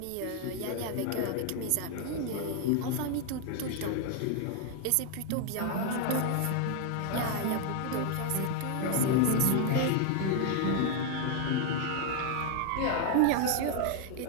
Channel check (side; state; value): both; different; correlation 0.00